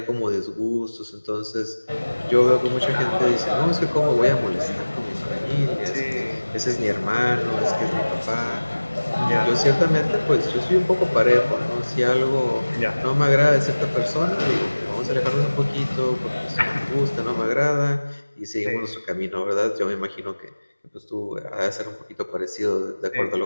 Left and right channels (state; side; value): inverted; both; correlation -1.00